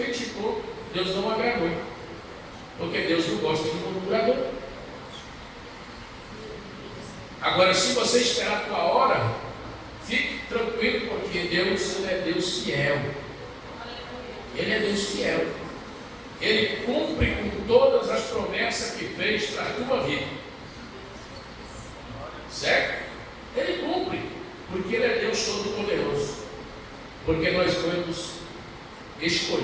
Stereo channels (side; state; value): both; identical; correlation 1.00